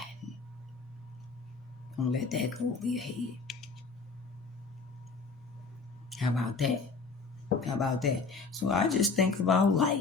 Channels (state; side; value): quieter; right; 4.4 dB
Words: Don't let that go over your head. How about that? So I just think about